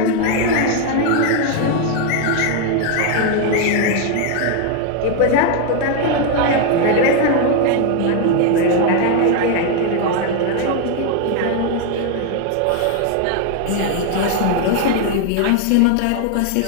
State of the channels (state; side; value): different; both; correlation 0.01